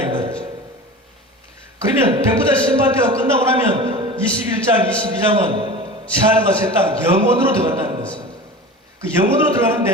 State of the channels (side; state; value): both; normal; correlation 0.34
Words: 말이죠. 그러면 백보자 심판대가 끝나고 나면 21장, 22장은 새하늘과 새 땅 영원으로 들어간다는 것입니다. 그 영원으로